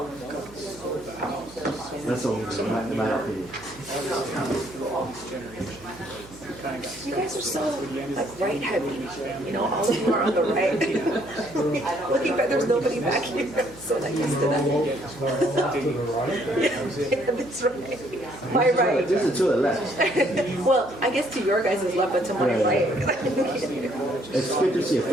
That's all, in my opinion. You guys are so like right heavy, you know, all of you are on the right. Looking back, there's nobody back here, so that used to that. Yeah, that's right. My right. This is to the left. Well, I guess to your guys' left, but to my right. It's good to see a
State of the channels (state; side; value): noise; right; hum, 22 dB below the sound